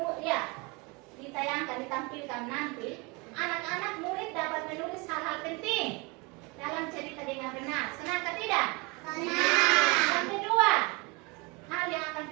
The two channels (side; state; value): left; quieter; 27.8 dB